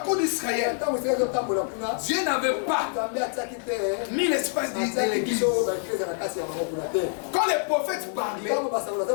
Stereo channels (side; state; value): right; silent; 55 dB below the other